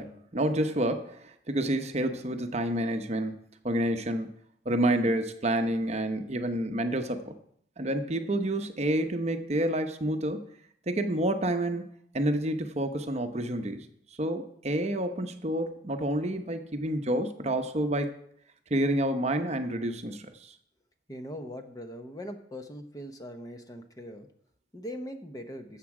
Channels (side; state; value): both; normal; correlation 0.55